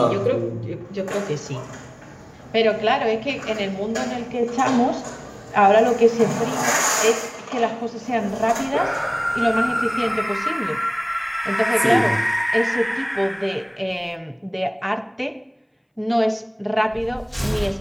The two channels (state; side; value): identical; both; correlation 1.00